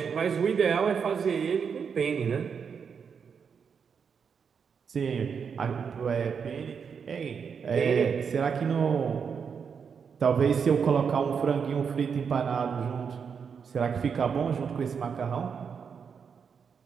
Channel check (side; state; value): left; quieter; 6.5 dB